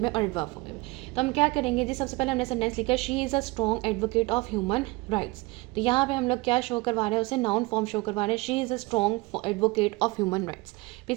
में और एडवर्ब फॉर्म में भी. तो हम क्या करेंगे जी, सबसे पहले हमने सेंटेंस लिखा, she is a strong advocate of human rights. तो यहाँ पे हम लोग क्या शो करवा रहे हैं, उसे नाउन फॉर्म शो करवा रहे हैं, she is a strong advocate of human rights. फिर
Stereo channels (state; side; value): quieter; left; 23.4 dB